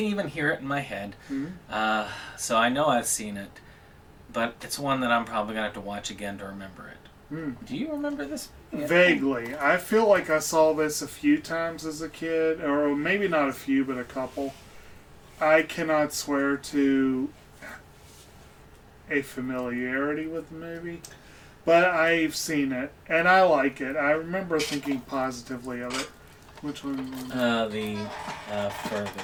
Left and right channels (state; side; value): identical; both; correlation 1.00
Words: even hear it in my head. So I know I've seen it. but it's one that I'm probably going to have to watch again to remember it. Do you remember this? Vaguely. I feel like I saw this a few times as a kid, or maybe not a few, but a couple. I cannot swear to a familiarity with the movie, but I've seen it, and I like it. I remember thinking positively of it. Which one?